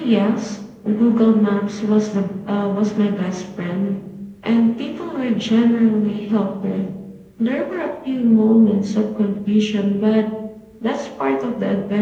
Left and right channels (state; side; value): identical; both; correlation 1.00